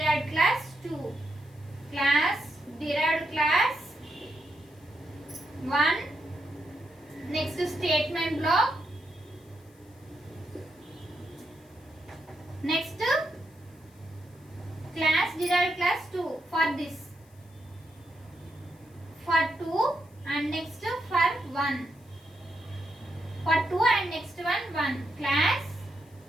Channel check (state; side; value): noise; left; hiss, 30 dB below the sound